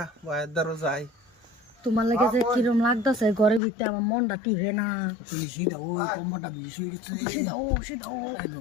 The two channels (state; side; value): drops out; right; at 3.6 s